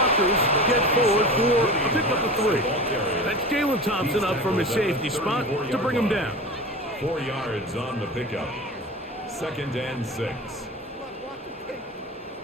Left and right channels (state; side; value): normal; both; correlation 0.32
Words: get forward for a pickup of 3. That's Jalen Thompson up from his safety spot to bring him down. 4 yards on the pickup. 2nd and 6.